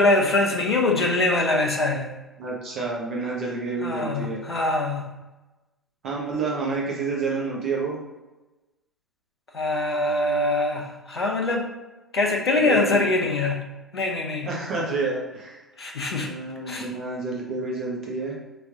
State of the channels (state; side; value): normal; both; correlation 0.32